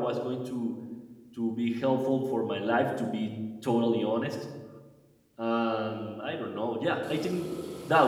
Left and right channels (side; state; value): both; identical; correlation 1.00